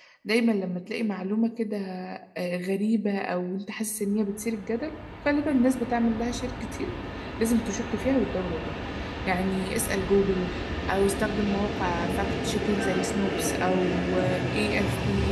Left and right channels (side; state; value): both; identical; correlation 1.00